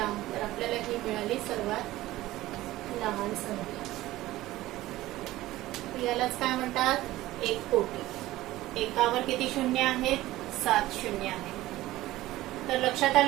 तर आपल्याला ही मिळाली सर्वात लहान संख्या. यालाच काय म्हणतात? 1 कोटी. एकावर किती शून्य आहेत? 7 शून्य आहेत. तर लक्षात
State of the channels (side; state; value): left; quieter; 16.6 dB